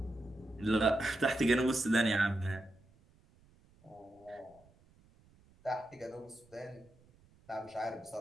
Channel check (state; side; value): noise; right; rumble, 29 dB below the sound